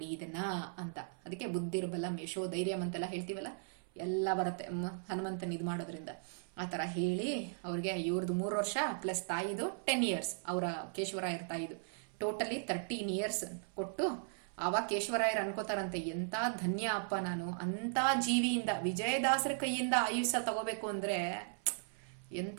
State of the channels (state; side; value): silent; left; 53 dB below the other